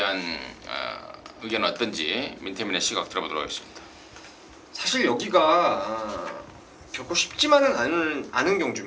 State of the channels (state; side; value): identical; both; correlation 1.00